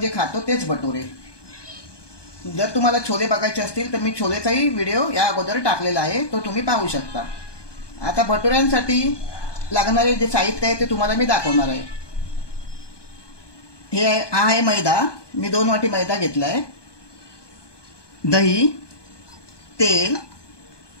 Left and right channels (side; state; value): right; late; 1.2 ms